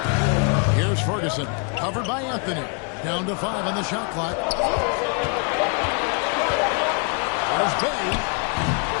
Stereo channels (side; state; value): right; quieter; 38.7 dB